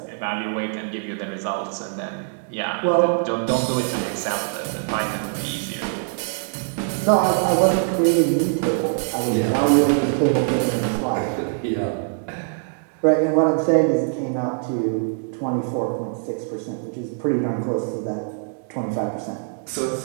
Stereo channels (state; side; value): silent; left; 63 dB below the other